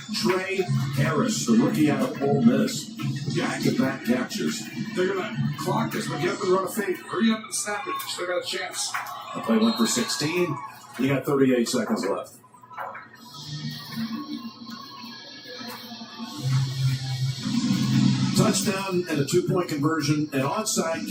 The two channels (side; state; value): both; identical; correlation 1.00